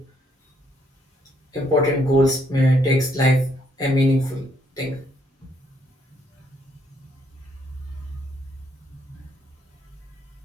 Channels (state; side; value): normal; both; correlation 0.71